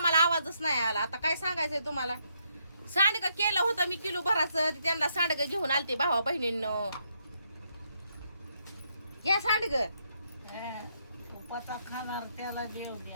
आवाजच नाही आला. आता काय सांगायचंय तुम्हाला. सांडगं केलं होतं मी किलो भराचं. त्यांना सांडगं घेऊन आलते भावा बहिणींनो. या सांडगं उपासा खाणार त्याला देव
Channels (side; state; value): both; inverted; correlation -0.76